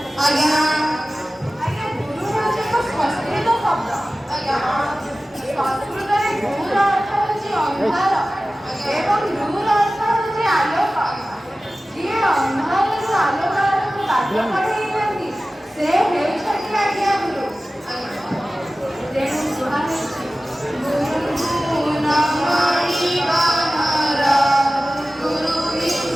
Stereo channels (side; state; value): both; normal; correlation 0.96